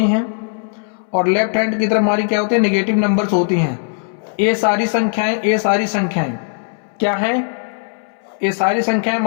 हैं और लेफ्ट हैंड की तरफ हमारी क्या होती है, नेगेटिव नंबर्स होती हैं। ये सारी संख्याएं क्या है, ये सारी संख्याएं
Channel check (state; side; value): silent; right; 63 dB below the other